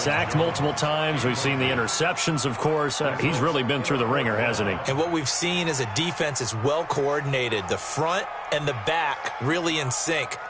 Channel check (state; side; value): identical; both; correlation 1.00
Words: multiple times. We've seen the interceptions, of course. He's really been through the ringer, hasn't he? And what we've seen is a defense is well coordinated. The front and the back really in sync.